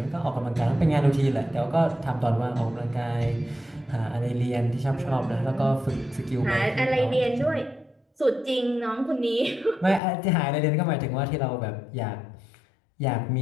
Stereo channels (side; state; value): right; drops out; at 10.0 s